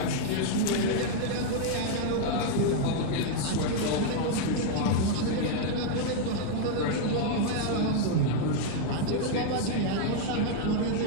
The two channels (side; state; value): both; different; correlation -0.01